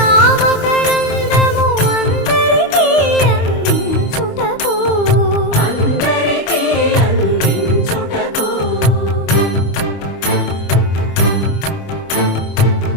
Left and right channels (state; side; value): late; right; 25 ms